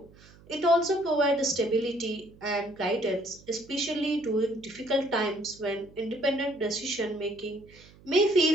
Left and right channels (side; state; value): right; noise; hum, 24 dB below the sound